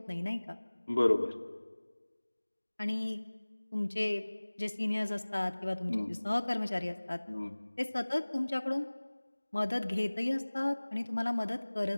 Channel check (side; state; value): both; inverted; correlation -1.00